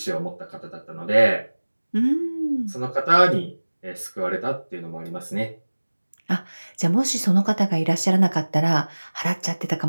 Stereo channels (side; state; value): both; inverted; correlation -1.00